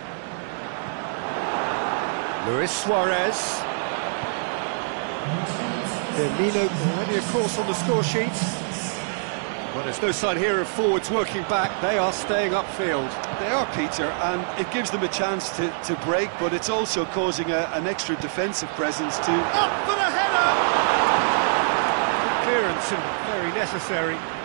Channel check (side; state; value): left; silent; digital silence